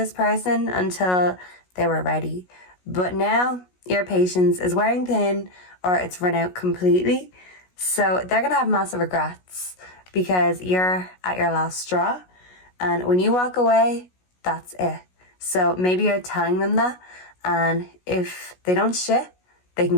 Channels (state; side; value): late; right; 16 ms